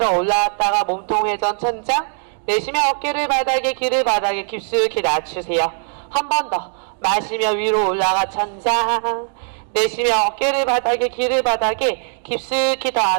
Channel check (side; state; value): left; silent; digital silence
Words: 올라왔다가 몸통 회전 천장. 내쉬며 어깨를 바닥에, 귀를 바닥에 깊숙이 낮추세요. 한 번 더. 마시며 위로 올라가 천장. 내쉬며 어깨를 바닥에, 귀를 바닥에 깊숙이 더